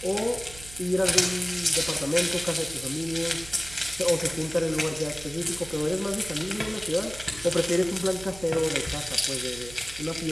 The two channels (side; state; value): right; noise; hum, 17 dB below the sound